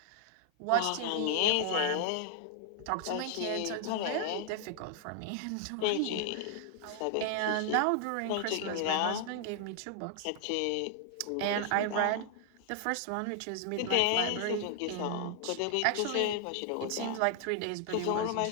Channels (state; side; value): different; both; correlation 0.00